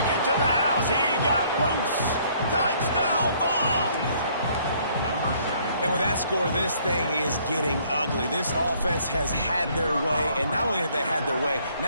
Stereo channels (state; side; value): inverted; both; correlation -0.62